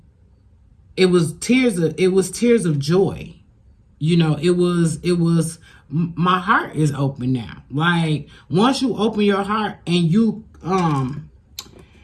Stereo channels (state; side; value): identical; both; correlation 1.00